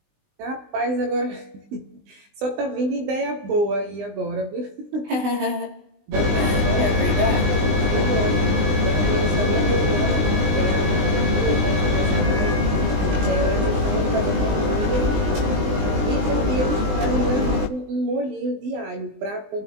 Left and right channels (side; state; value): left; late; 20 ms